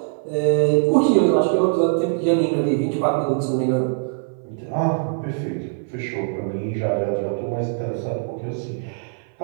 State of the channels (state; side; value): silent; left; 57 dB below the other